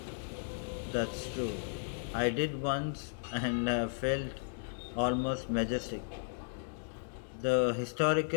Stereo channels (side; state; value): right; silent; digital silence